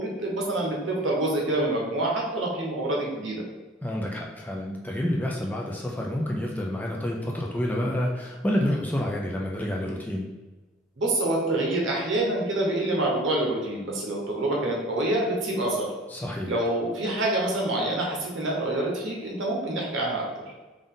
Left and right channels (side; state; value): both; normal; correlation 0.46